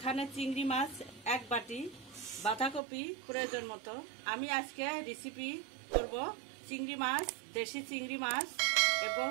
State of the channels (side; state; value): left; drops out; at 2.8 s